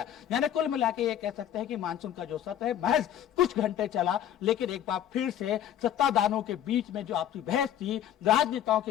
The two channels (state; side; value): quieter; right; 10.8 dB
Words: यानी कुल मिलाकर ये कह सकते हैं कि मानसून का जो सत्र है महज कुछ घंटे चला, लेकिन एक बार फिर से सत्ताधारों के बीच में जो आपसी बहस थी, राजनेताओं